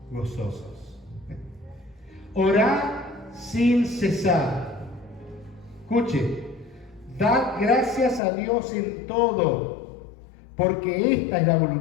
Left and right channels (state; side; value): drops out; right; at 8.2 s